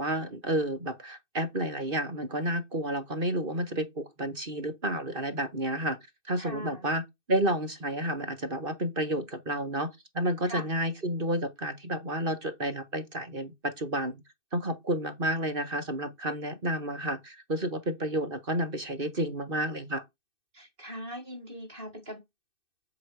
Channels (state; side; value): late; left; 2.6 ms